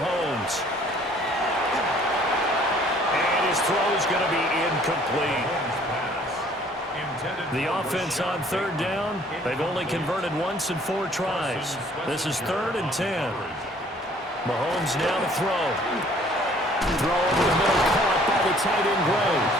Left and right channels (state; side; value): normal; both; correlation 0.57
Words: And his throw is going to be incomplete. The offense on third down, they've only converted once in 4 tries. This is 3rd and 10. Mahomes now to throw. Throw over the middle, caught by the tight end Gray.